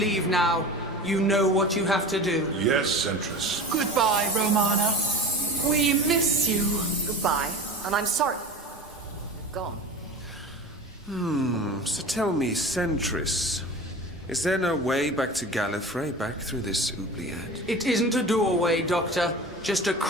now. You know what you have to do. Yes, Centris. Goodbye, Romana. We miss you. Goodbye. And I'm sorry. Gone. So tell me, Centris, is there no way back to Gallifrey, back through this oubliette? It isn't a doorway, Doctor. Just a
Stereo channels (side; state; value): both; normal; correlation 0.34